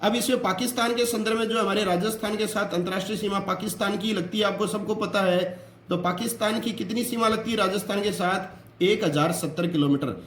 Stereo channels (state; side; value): identical; both; correlation 1.00